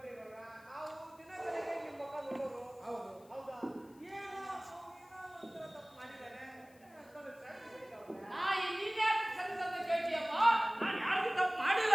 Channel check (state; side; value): noise; left; hiss, 28 dB below the sound